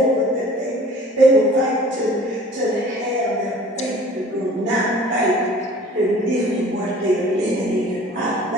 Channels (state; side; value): normal; both; correlation 0.48